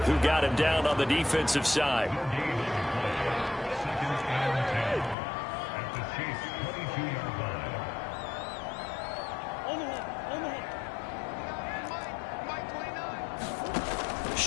who got him down on the defensive side.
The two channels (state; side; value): drops out; right; at 5.2 s